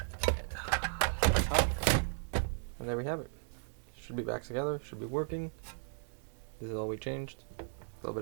and there we have it. Should be back together. Should be working. This is all we changed. A little bit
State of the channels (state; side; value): silent; left; 54 dB below the other